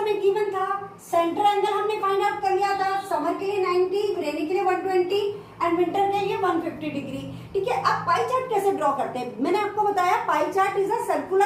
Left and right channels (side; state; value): both; identical; correlation 1.00